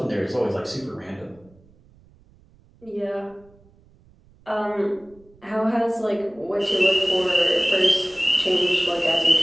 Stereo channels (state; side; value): noise; right; rumble, 29 dB below the sound